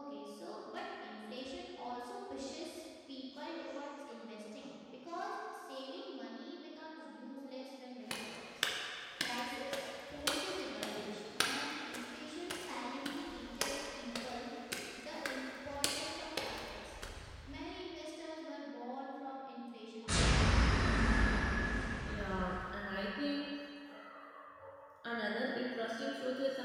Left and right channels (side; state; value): both; identical; correlation 1.00